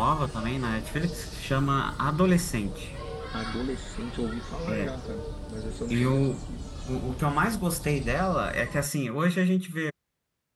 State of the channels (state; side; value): identical; both; correlation 1.00